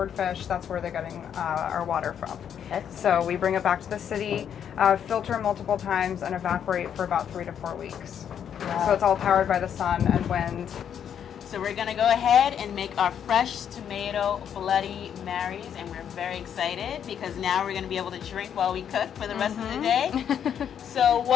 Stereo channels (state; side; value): quieter; right; 8.7 dB